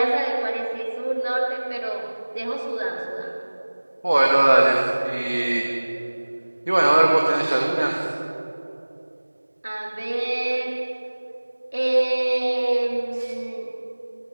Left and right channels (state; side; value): inverted; both; correlation -1.00